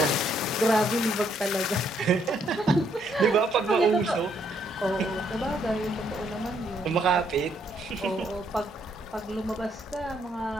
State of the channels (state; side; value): normal; both; correlation 0.71